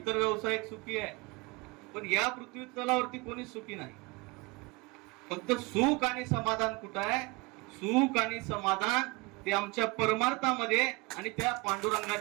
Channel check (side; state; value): left; quieter; 25.8 dB